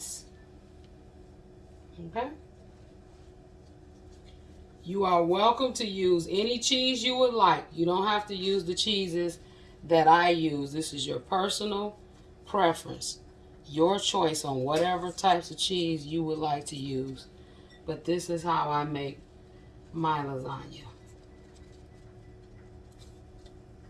Okay? You are welcome to use any cheese you would like. You don't have to use the cheeses that I use. This is your personal preference. Your choice on whatever types of cheese you would like to use. But this is how I make my lasagna.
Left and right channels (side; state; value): both; identical; correlation 1.00